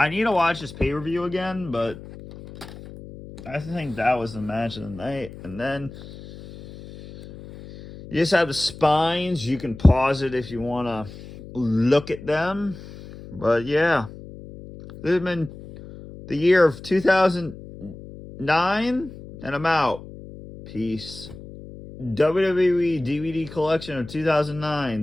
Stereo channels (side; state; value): left; noise; hum, 15 dB below the sound